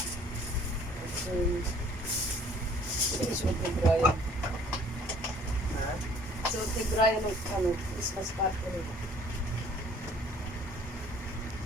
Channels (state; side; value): normal; both; correlation 0.56